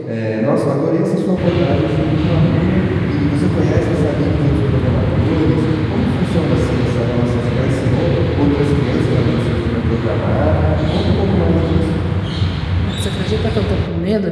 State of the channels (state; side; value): identical; both; correlation 1.00